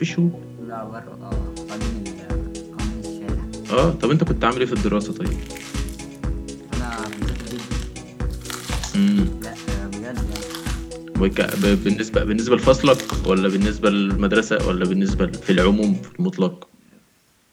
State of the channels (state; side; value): identical; both; correlation 1.00